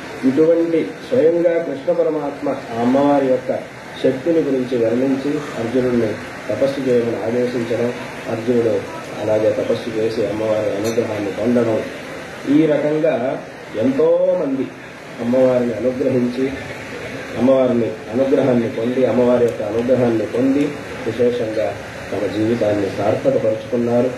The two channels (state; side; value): identical; both; correlation 1.00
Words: ఇటువంటి స్వయంగా కృష్ణ పరమాత్మ ఆ అమ్మవారి యొక్క శక్తిని గురించి వర్ణించి అర్జునుడిని తపస్సు చేయమని ఆదేశించడం, అర్జునుడు అలాగే తపస్సు చేసి అమ్మవారి అనుగ్రహాన్ని పొందడం, ఈ రకంగా ఎంతో మంది అమ్మవారిని అనుగ్రహించి అమ్మవారిని అనుగ్రహాన్ని పొంది అమ్మవారి యొక్క అనుగ్రహాన్ని పొంది విశేషంగా తమ జీవితాన్ని సార్థకపరుచుకున్నారు.